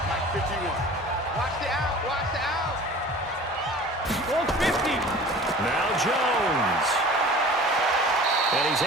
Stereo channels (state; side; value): normal; both; correlation 0.42